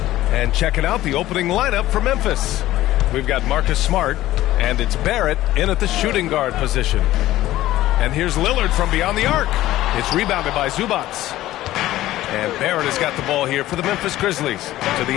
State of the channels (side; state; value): right; quieter; 15.2 dB